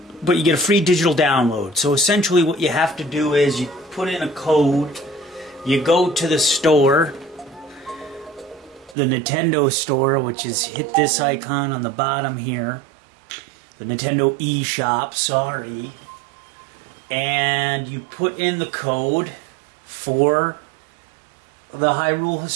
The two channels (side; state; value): left; drops out; at 9.0 s